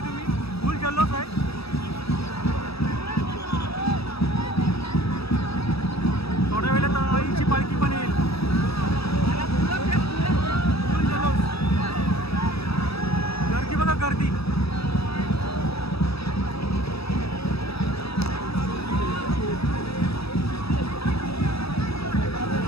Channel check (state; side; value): late; right; 0.77 ms